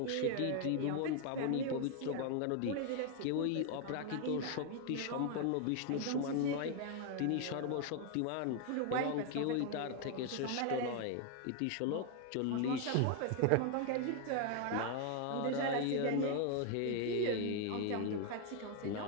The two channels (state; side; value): different; both; correlation 0.00